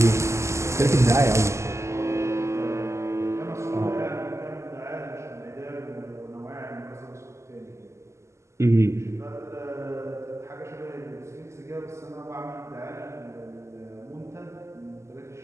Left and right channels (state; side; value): late; left; 0.13 ms